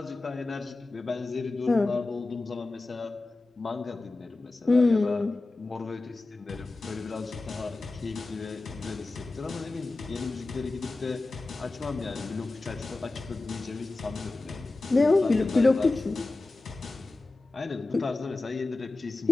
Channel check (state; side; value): quieter; right; 3.2 dB